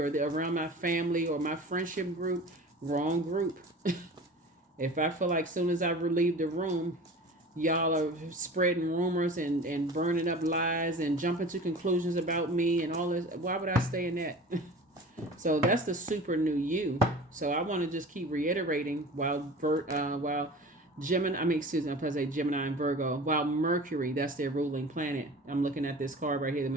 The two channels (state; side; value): normal; both; correlation 0.39